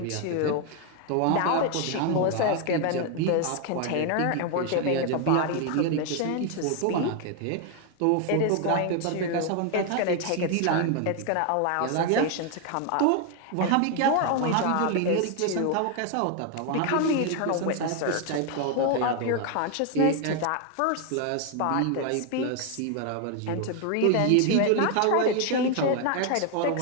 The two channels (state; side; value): different; both; correlation 0.01